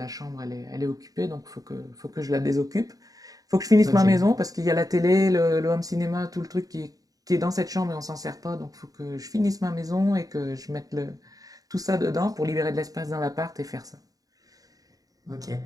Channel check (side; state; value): left; late; 0.18 ms